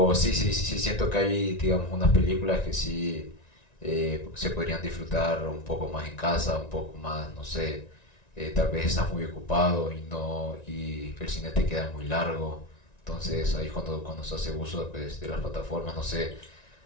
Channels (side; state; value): right; late; 1.9 ms